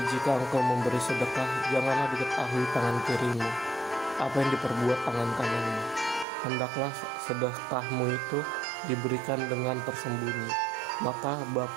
jika engkau memberi sedekah, janganlah diketahui tangan kirimu apa yang diperbuat tangan kananmu. Hendaklah sedekahmu itu diberikan dengan tersembunyi, maka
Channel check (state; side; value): drops out; left; at 6.2 s